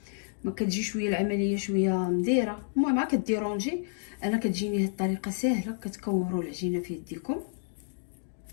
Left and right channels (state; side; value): silent; right; digital silence